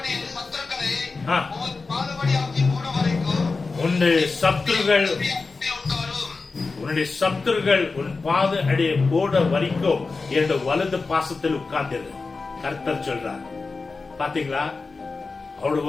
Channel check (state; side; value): quieter; right; 4.1 dB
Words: உன்னுடைய சத்துருகள் உன் பாத அடைய போட வரைக்கும் என்னோட வலது பாசத்தில் உட்கார்ந்திரு. கர்த்தர் சொல்றார். பாத்தீங்களா? அவரோட